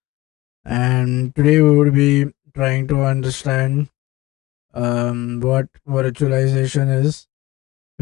and today we will be trying to understand what virtualization is.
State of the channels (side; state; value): right; quieter; 18.0 dB